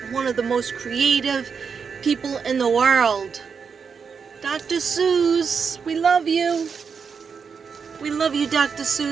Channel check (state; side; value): quieter; left; 6.0 dB